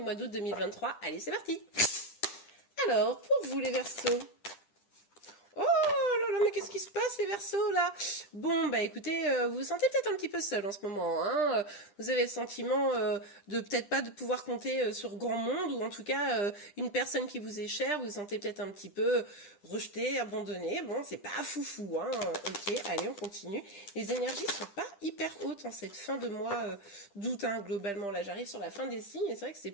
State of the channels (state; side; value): late; right; 10 ms